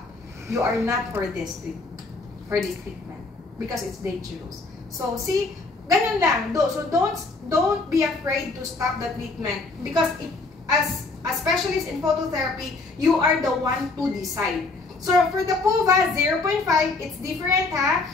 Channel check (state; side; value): quieter; right; 3.6 dB